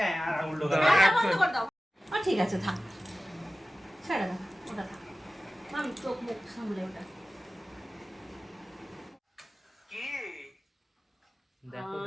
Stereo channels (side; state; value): both; normal; correlation 0.96